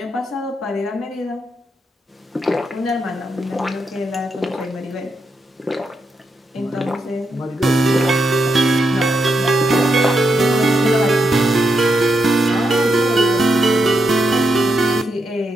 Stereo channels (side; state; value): both; normal; correlation 0.83